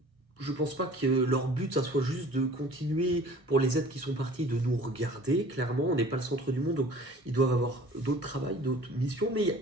je pense pas que leur but, ça soit juste de continuer pour les êtres qui sont partis, de nous regarder. Clairement, on n'est pas le centre du monde, donc ils doivent avoir d'autres travails, d'autres missions.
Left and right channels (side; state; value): left; late; 1.4 ms